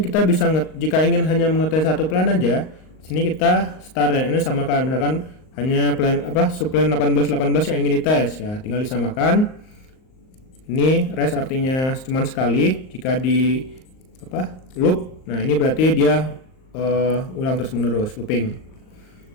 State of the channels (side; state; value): right; late; 38 ms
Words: bisa jika ingin hanya mengetes satu plan aja, di sini kita start dan ini samakan. Misalkan hanya subplan 18 yang ingin dites ya, tinggal disamakan. Ini rest artinya cuma sekali, jika di loop. Nah, ini berarti dia ulang terus menerus, looping.